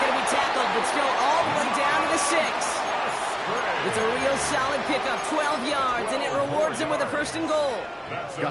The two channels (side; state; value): both; identical; correlation 1.00